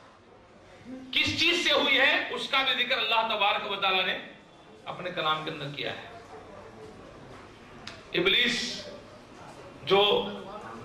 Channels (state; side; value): identical; both; correlation 1.00